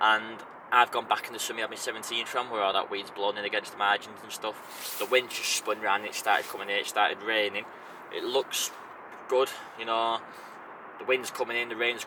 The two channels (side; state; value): both; identical; correlation 1.00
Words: And I've gone back in the summy I've been 17 from, where all that weed's blown in against the margins and stuff. The wind just spun round and it started coming in, it started raining. It looks good, you know, the wind's coming in, the rain's